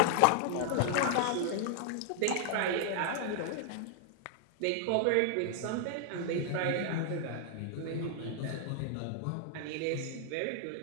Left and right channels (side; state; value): both; different; correlation 0.00